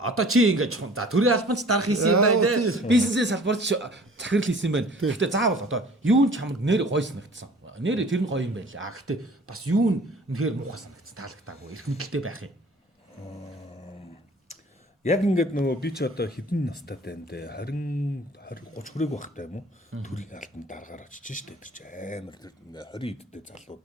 чи ингэж за төрийн албанч дарах хийсэн юм байна те. Бизнесийн салбарт захирал хийсэн юм байна. Гэхдээ заавал одоо юу нь чамд нэр гоё санагдсан. Нэрээ тэр нь гоё юм байлаа. Гэхдээ бас юу нь үнэхээр муухай санагдсан, таалагдаагүй. Эрх мэдэлтэй байх юм. Яг ингээд нөгөө би ч одоо хэдэн настай юм бэ? 20 30 хүрээг багтай юм уу? Төрийн албанд дараагаар очиж штэ тэр чи амар 20 идтэй залуу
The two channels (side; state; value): both; normal; correlation 0.49